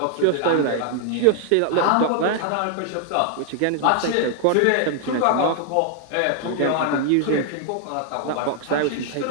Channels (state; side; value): different; both; correlation 0.00